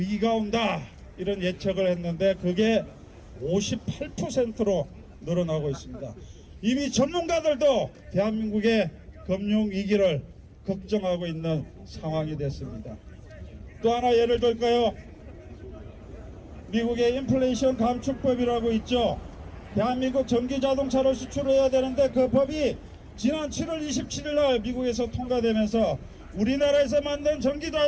온다 이런 예측을 했는데 그게 58%로 늘어나고 있습니다. 이미 전문가들도 대한민국의 금융위기를 걱정하고 있는 상황이 됐습니다. 또 하나 예를 들까요? 미국의 인플레이션 감축법이라고 있죠. 대한민국 전기자동차를 수출해야 되는데 그 법이 지난 7월 27일 날 미국에서 통과되면서 우리나라에서 만든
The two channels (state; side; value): identical; both; correlation 1.00